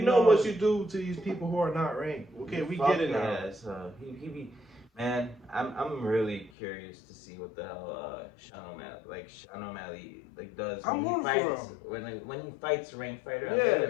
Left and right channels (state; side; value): drops out; right; at 6.5 s